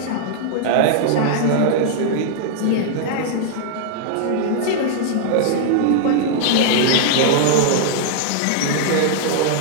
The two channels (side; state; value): both; different; correlation -0.01